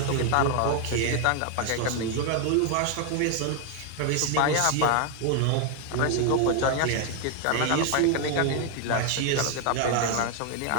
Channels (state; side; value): different; both; correlation 0.00